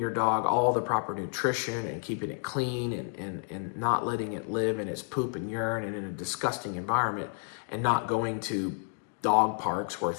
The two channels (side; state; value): right; silent; 58 dB below the other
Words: dog all the proper nutrition and keeping it clean and not letting it live in its poop and urine and in a disgusting environment, and not going to dog parks where